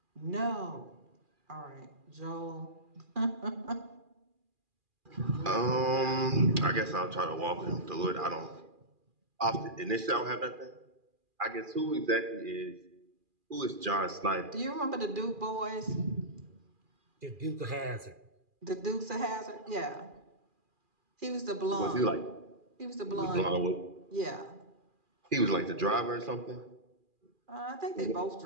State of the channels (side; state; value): left; late; 2.4 ms